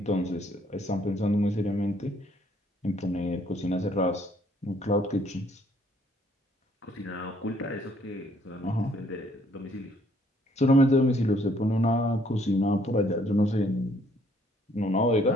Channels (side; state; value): both; normal; correlation 0.65